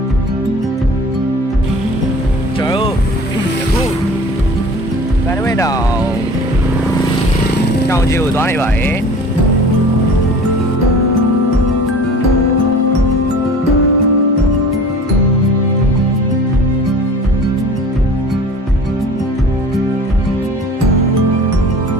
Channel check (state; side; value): normal; both; correlation 0.42